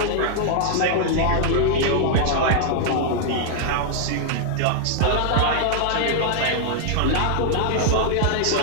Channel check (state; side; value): different; both; correlation -0.01